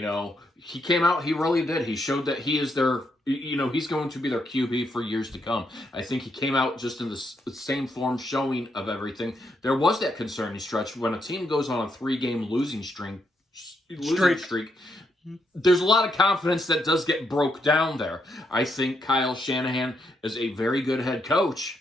came out, he really did. He showed that he is their, he's going to be their QB for years to come. I think he came out just in the same form showing of everything. There was that concerning stretch when a team goes on a 3-game losing streak. There's a lot of confidence that does get broke down there. I think Kyle Shanahan is a very good head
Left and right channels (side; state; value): both; normal; correlation 0.78